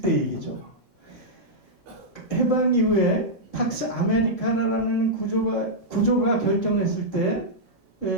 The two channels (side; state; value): both; normal; correlation -0.09